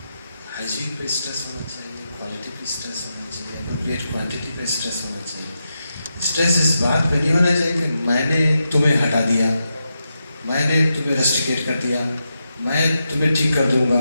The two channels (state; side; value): inverted; both; correlation -0.87